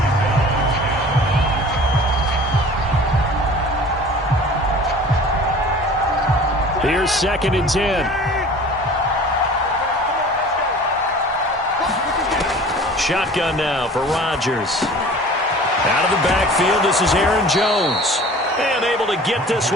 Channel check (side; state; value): both; normal; correlation 0.44